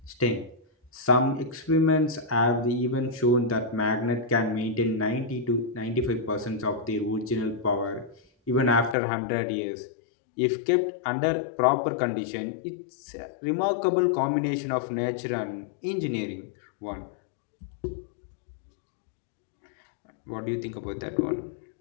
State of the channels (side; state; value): right; drops out; at 9.0 s